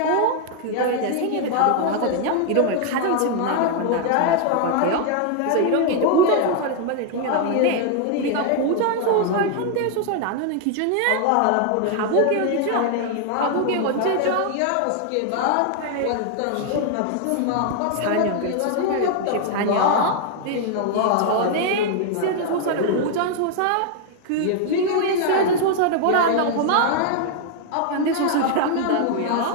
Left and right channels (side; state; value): both; different; correlation 0.00